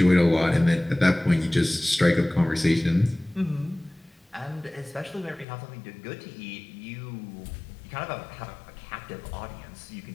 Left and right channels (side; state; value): right; drops out; at 5.5 s